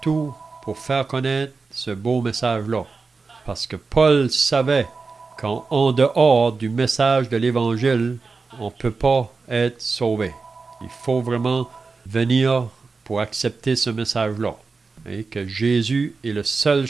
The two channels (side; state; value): left; quieter; 4.3 dB